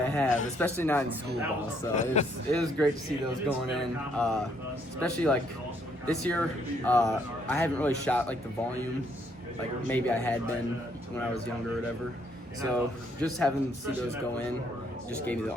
have, especially not in school ball. So it was great to see those going in. Especially this year, I haven't really shot the volume like maybe I had been when I was younger or whatever. So just having to see those go in just gave me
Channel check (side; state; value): both; normal; correlation 0.70